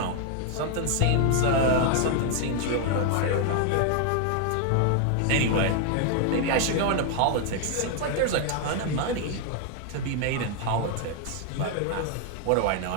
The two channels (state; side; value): different; both; correlation 0.00